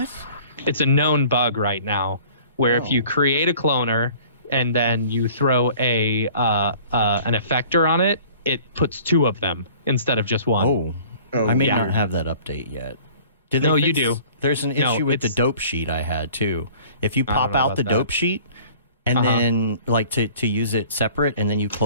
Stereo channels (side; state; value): both; inverted; correlation -0.49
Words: It's a known bug right now where if you create a cloner and then you throw an effector on it, it puts two of them instead of just one. I may not have that update yet. No, you do. There's an issue with the dope sheet I had too. If you pop out the dope sheet and then like to use it separate and then you